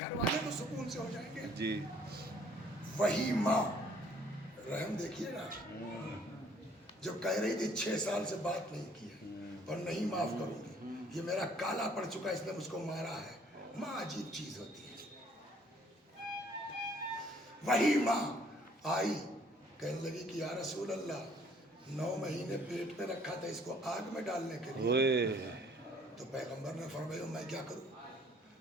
والے تو سکون سے ہو جائیں گے. جی. وہی ماں, رحم دیکھیے نا, جو کہہ رہی تھی 6 سال سے بات نہیں کی ہے اور نہیں معاف کروں گی, یہ میرا کالا پڑ چکا اس نے مجھ کو مارا ہے. ماں عجیب چیز ہوتی ہے. وہی ماں آئی, کہنے لگی کہ یا رسول اللہ 9 مہینے پیٹ میں رکھا تھا اس کو آگ میں ڈالنے کے لیے. تو پیغمبر نے فرمایا میں کیا کروں,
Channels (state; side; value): normal; both; correlation 0.60